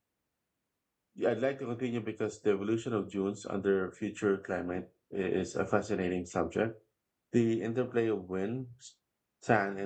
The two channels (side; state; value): both; identical; correlation 1.00